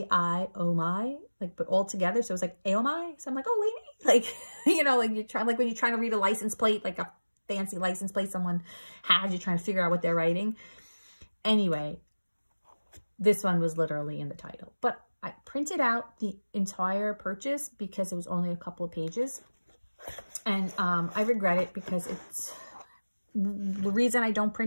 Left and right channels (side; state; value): both; inverted; correlation -1.00